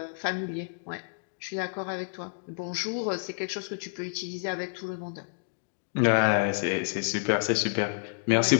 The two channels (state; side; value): silent; right; digital silence